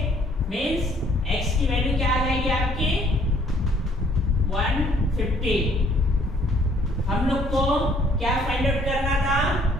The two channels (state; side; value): normal; both; correlation 0.61